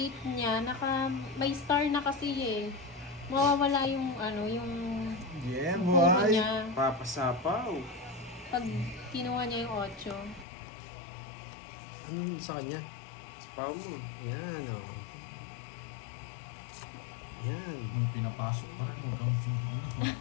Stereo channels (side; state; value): right; drops out; at 10.5 s